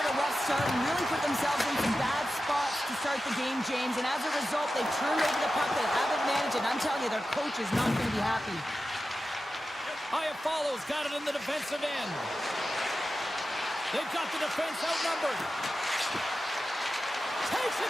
a rough start and really put themselves in some bad spots to start the game, James, and as a result, they've turned over the puck. They haven't managed it. I'm telling you, their coach is not going to be happy. Iafallo's got it in the defensive end. They've got the defense outnumbered. Takes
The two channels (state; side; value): normal; both; correlation 0.92